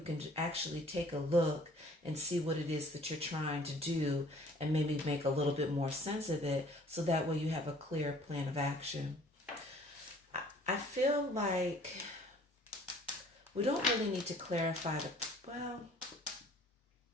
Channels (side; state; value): both; normal; correlation 0.54